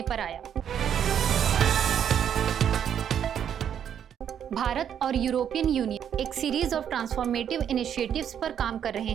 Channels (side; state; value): left; quieter; 9.0 dB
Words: पर आया। भारत और यूरोपियन यूनियन एक सीरीज ऑफ ट्रांसफॉर्मेटिव इनिशिएटिव्स पर काम कर रहे